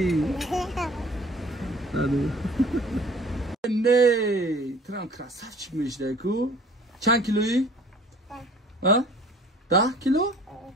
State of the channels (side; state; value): both; normal; correlation 0.49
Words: نه ترام کراسف چی میشده کو چند کیلویی؟ 10 کیلو؟